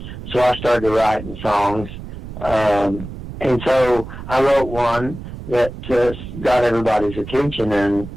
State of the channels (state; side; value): noise; right; rumble, 11 dB below the sound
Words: so I started writing songs, and so I wrote one that got everybody's attention, and